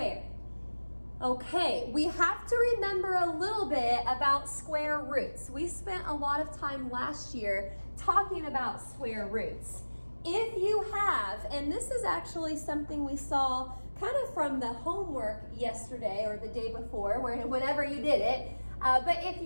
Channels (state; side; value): inverted; both; correlation -1.00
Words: Okay, we have to remember a little bit about square roots. We spent a lot of time last year talking about square roots. if you have, and this is actually something we saw kind of from the homework yesterday or the day before, whenever you did it, but if